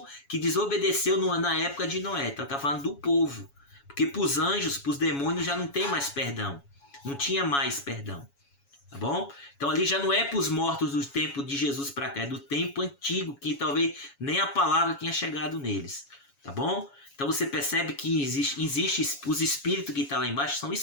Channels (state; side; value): late; right; 7.2 ms